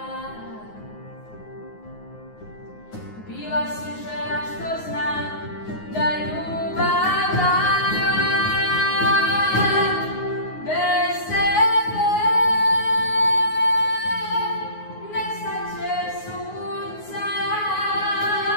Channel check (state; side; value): late; right; 9.5 ms